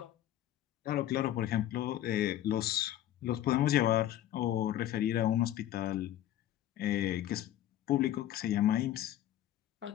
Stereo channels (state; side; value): quieter; right; 12.6 dB